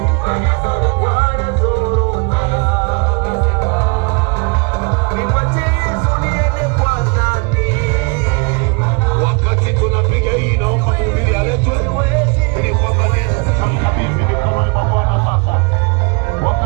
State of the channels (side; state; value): left; quieter; 32.9 dB